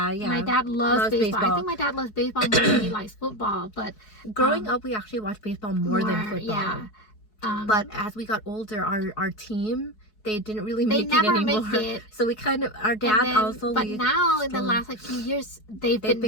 My dad loves baseball. I think my dad loves baseball more than he likes football. But growing up, we actually watched baseball more than football. Yeah. But as we got older, our team, they didn't really make it never anymore. Make it. So we kind of, our dad also. But now in the last few years, they've been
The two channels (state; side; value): late; right; 4.7 ms